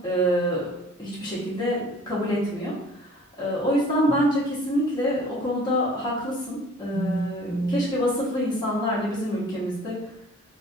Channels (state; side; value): normal; both; correlation 0.50